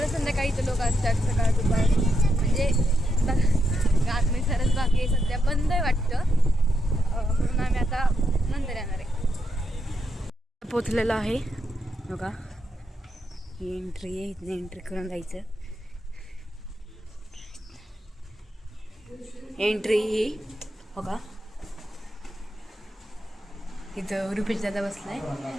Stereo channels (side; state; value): both; normal; correlation 0.83